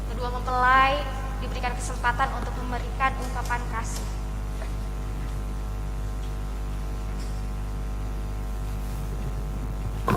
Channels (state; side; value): identical; both; correlation 1.00